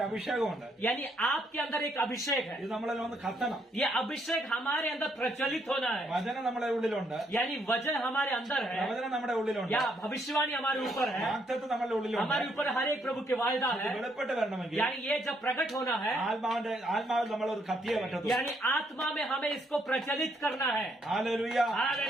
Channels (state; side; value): normal; both; correlation 0.73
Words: അഭിഷേകമുണ്ട്. यानी आपके अंदर एक अभिषेक है. ഇത് നമ്മളിൽ ഒന്ന് കത്തണം. ये अभिषेक हमारे अंदर प्रचलित होना है. വചനം നമ്മുടെ ഉള്ളിലുണ്ട്. यानी वजन हमारे अंदर है, പ്രവചനം നമ്മുടെ ഉള്ളിലുണ്ട്. या भविष्यवाणी हमारे ऊपर है, വാഗ്ദത്തം നമ്മുടെ ഉള്ളിലുണ്ട്. हमारे ऊपर हर एक प्रभु के वायदा ഇത് है. വെളിപ്പെട്ട് വരണമെങ്കിൽ यानी ये जब प्रकट होना है, ആത്മാവിൽ നമ്മൾ ഒരു കത്തിയെ പറ്റത്തുള്ളൂ. यानी आत्मा में हमें इसको प्रचलित करना है. Hallelujah